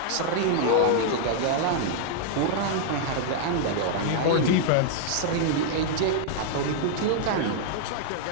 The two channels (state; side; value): different; both; correlation -0.01